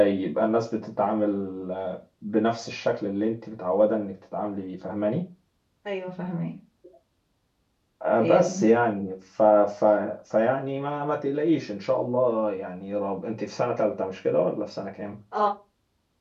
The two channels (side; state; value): both; identical; correlation 1.00